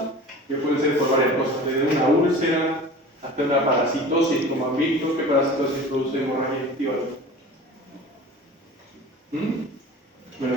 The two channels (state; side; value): normal; both; correlation 0.39